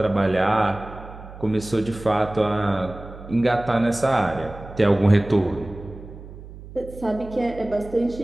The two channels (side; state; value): right; noise; hum, 15 dB below the sound